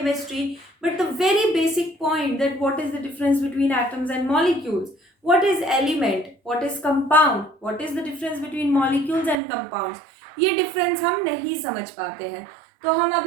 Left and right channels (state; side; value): drops out; left; at 9.3 s